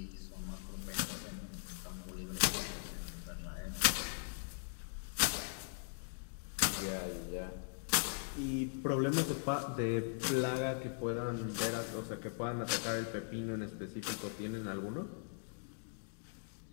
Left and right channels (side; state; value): right; silent; digital silence